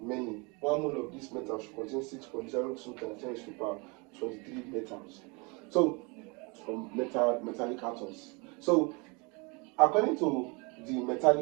Many. One mole of this metal should contain 6.02 times 10 to the power 23 metals. So, metallic atoms. So, according to the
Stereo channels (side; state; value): left; quieter; 29.6 dB